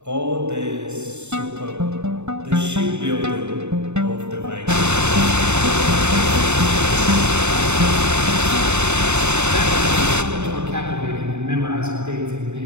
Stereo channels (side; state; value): left; late; 0.82 ms